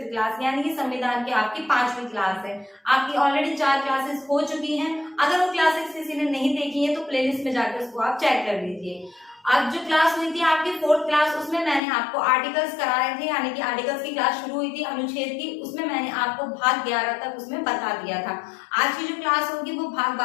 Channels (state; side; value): drops out; right; at 11.8 s